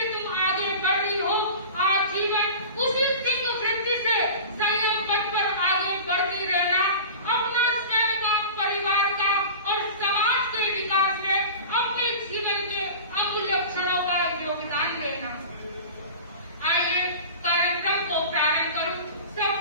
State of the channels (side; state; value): both; inverted; correlation -0.34